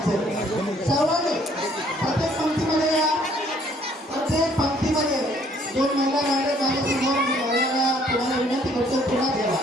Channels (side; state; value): both; normal; correlation 0.62